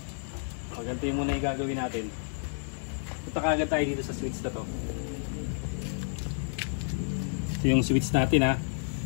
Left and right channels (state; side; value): silent; right; 56 dB below the other